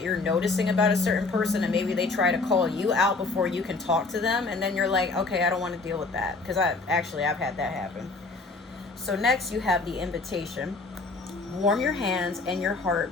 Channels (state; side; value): quieter; right; 3.7 dB